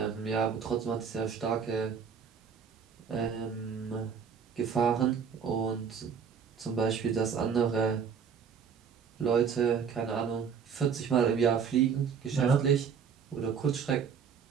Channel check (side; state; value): left; quieter; 6.8 dB